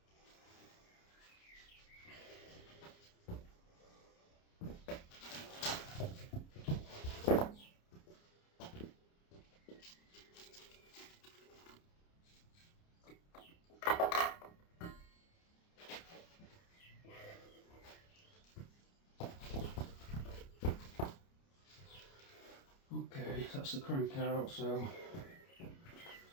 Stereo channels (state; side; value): late; right; 29 ms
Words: that's the crank out. So